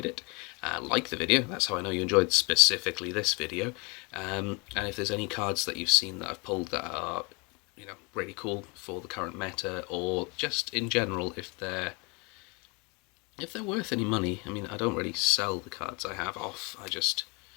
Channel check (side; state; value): right; quieter; 30.4 dB